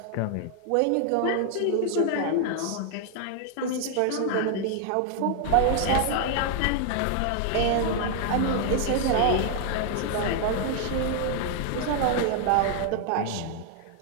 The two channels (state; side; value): different; both; correlation 0.00